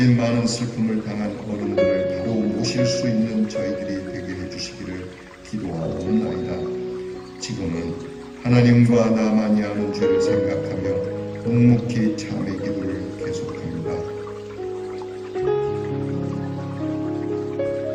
많은 슬픔을 당한 어른들을 바로 모실 수 있는 저희들이 되게 해주시기를 기도하옵나이다. 지금은 하나님과 나만이 아는 죄를 생각하며 묵묵히 참의 기도를 계속합니다.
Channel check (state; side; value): identical; both; correlation 1.00